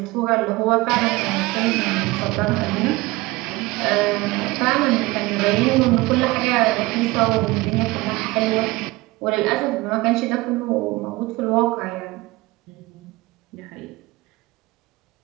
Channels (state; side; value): quieter; left; 21.2 dB